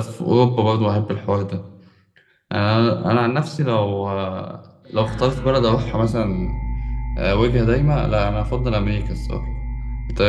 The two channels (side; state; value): both; identical; correlation 1.00